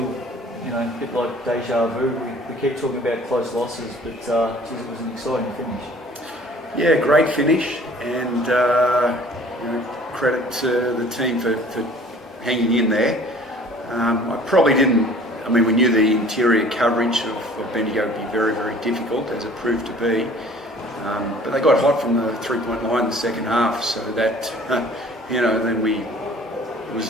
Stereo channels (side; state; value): both; normal; correlation 0.51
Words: a bit like deja vu. We keep talking about close losses, but geez, it was an exciting finish. Yeah, great finish, and credit to the team for hanging in there. I probably didn't. I mean, we knew the interior coverage of Bendigo would be very, very difficult, as it proved to be. But they got hot from the three-point line in the second half, so that then it was